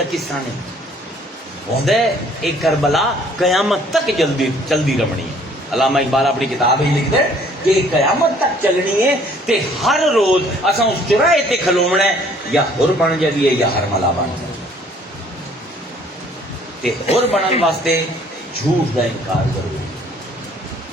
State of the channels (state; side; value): normal; both; correlation 0.58